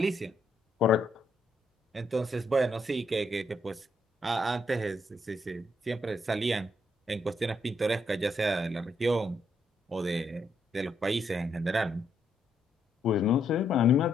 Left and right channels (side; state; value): both; normal; correlation 0.76